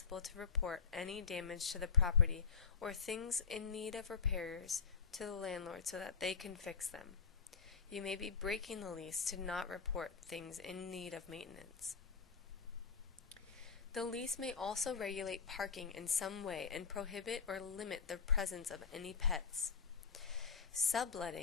to report any damage to the property or things in need of repairs to the landlord so that they can fix them. You may be breaking the lease to not report things in need of maintenance. The lease may also regulate parking in some way and prohibit or limit the presence of any pets.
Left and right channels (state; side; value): quieter; right; 5.7 dB